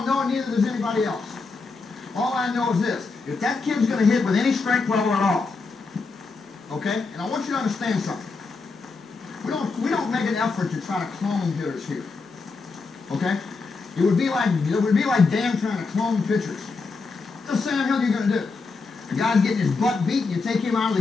know, and neither does anybody else. All I know is this. If that kid's going to hit with any strength level at all, okay? And I want you to understand something. We don't make an effort to try to clone hitters here. Okay? It would be like Dan trying to clone pitchers. What the hell are you going to do? The guy's getting his butt beat, and you take him out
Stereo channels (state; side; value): quieter; right; 4.2 dB